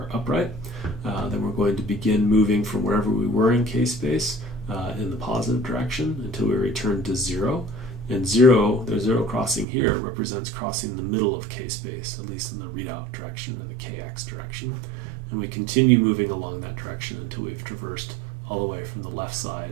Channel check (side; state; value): left; drops out; at 9.7 s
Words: upright, then we're going to begin moving from wherever we were in k-space in the positive direction until we return to 0. And 0, the 0 crossing here represents crossing the middle of k-space, at least in the readout direction or the kx direction. And we continue moving along that direction until we've traversed all the way from the left